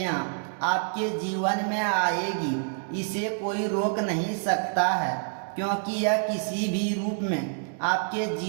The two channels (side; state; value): left; silent; digital silence